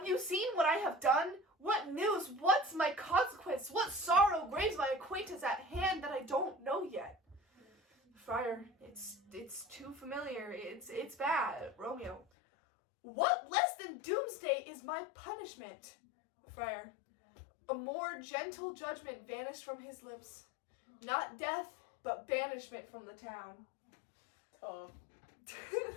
you seen what I have done? What news? What's my consequence? What sorrow graves my acquaintance at hand that I don't know yet? Friar, it's too familiar. It's bad. Romeo, what less than doomsday is my punishment? Friar, a more gentle judgment vanished from his lips. Not death, but banishment from the town. Tough.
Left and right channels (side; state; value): right; drops out; at 12.2 s